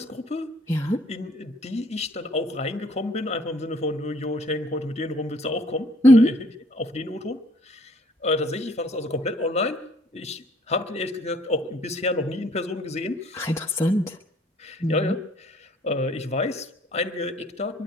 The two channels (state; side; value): normal; both; correlation 0.60